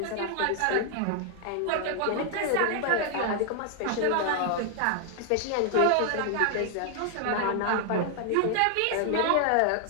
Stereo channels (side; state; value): both; different; correlation 0.00